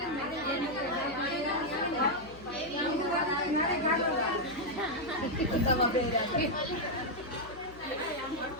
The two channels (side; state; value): left; noise; hum, 19 dB below the sound